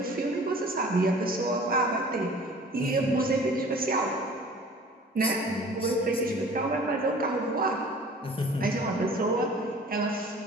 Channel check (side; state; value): both; normal; correlation 0.47